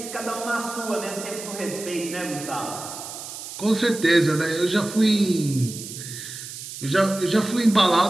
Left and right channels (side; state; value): right; noise; hiss, 10 dB below the sound